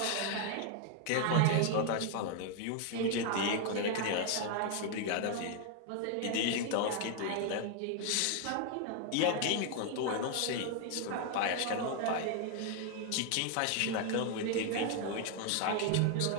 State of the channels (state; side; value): different; both; correlation 0.00